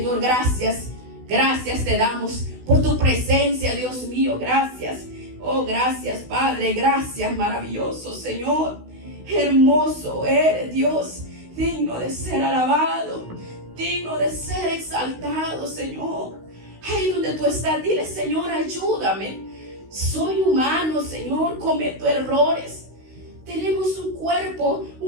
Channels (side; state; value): left; late; 16 ms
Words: gracias. Gracias te damos por tu presencia, Dios mío. Gracias. Oh, gracias, Padre. Gracias, maravilloso Señor. Hermoso eres, Dios. Digno de ser alabado. Digno de ser exaltado, Señor. Ahí donde tú estás, dile: Señor, ayúdame. Soy humano, Señor. Cometo errores. Tenemos un cuerpo